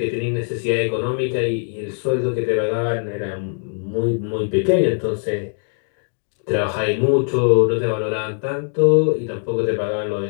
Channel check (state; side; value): silent; right; 63 dB below the other